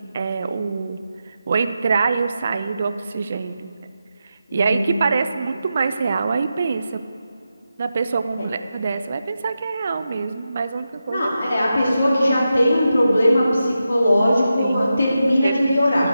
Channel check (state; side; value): inverted; both; correlation -0.89